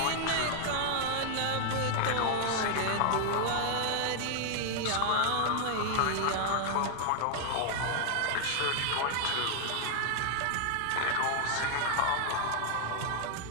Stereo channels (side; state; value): both; different; correlation 0.00